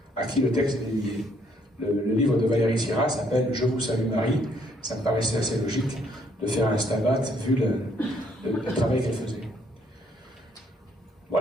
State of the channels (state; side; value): normal; both; correlation 0.68